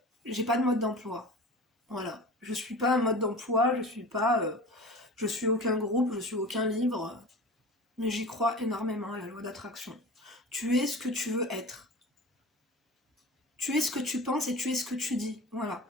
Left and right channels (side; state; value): both; normal; correlation 0.35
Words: j'ai pas de mode d'emploi. Voilà. Je suis pas un mode d'emploi, je suis aucun groupe, je suis aucun livre, mais j'y crois énormément à la loi d'attraction. Tu es ce que tu veux être. Tu es ce que tu penses et tu es ce que tu dis. Voilà.